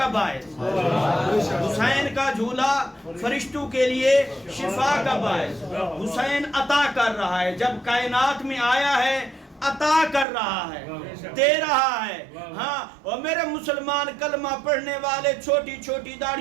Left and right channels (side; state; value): left; drops out; at 10.2 s